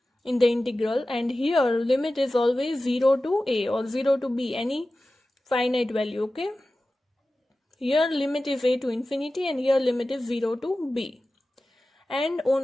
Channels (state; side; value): normal; both; correlation 0.95